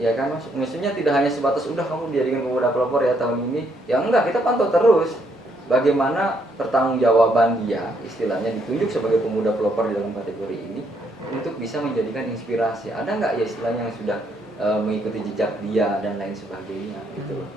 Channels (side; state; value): both; normal; correlation 0.72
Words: kan Mas, maksudnya tidak hanya sebatas udah kamu dijadikan Pemuda Pelopor ya tahun ini, ya enggak, kita pantau terus bagaimana pertanggungjawaban dia, istilahnya ditunjuk sebagai Pemuda Pelopor di dalam kategori ini untuk bisa menjadikan inspirasi. Ada nggak ya istilahnya yang sudah mengikuti jejak dia dan lain sebagainya gitu loh.